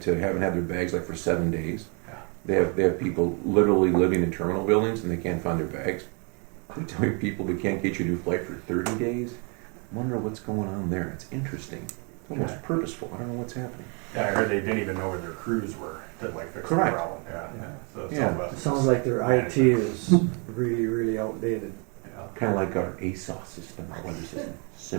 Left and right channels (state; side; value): quieter; left; 35.0 dB